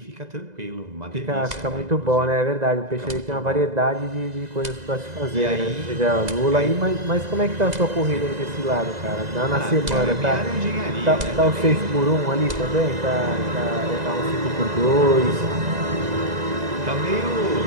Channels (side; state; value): left; late; 2.0 ms